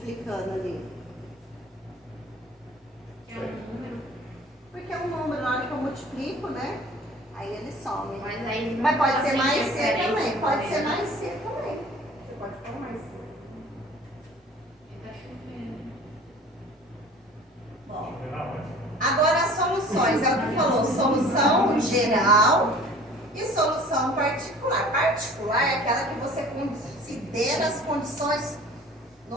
ali? É um número. Porque é um número, na hora que eu multiplico, né? Aí ele some. Mas aí Mas pode ser assim, mais c diferença, também. Pode né? ser mais c também. Você pode pôr mais c. Tá chovendo. Bom, Não, agora as soluções. É o que falou. Solução geral e solução particular. Particular é aquela que você considera as condições.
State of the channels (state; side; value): normal; both; correlation 0.46